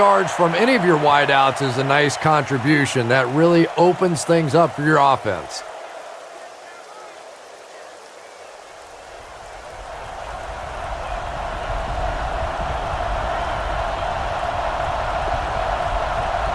from any of your wideouts is a nice contribution. That really opens things up for your offense.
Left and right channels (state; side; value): identical; both; correlation 1.00